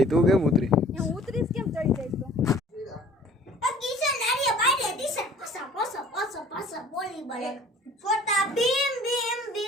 તું કેમ ઉતરી? હું ઉતરીશ કેમ ચડી જઈશ તો કિશન નારિયા બાડે દિશન પસા પસા પસા પસા બોલ ઓલી બને છોટા ભીમ ભીમ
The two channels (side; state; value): both; normal; correlation 0.51